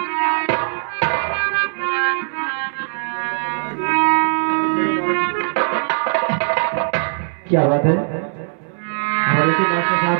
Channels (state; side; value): silent; left; digital silence